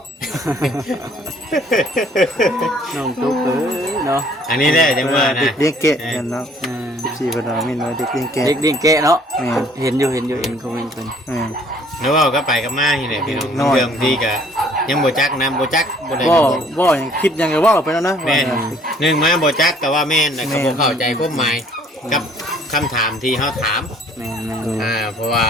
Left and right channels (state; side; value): normal; both; correlation 0.58